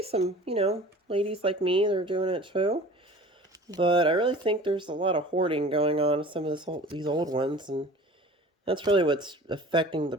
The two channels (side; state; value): both; normal; correlation 0.43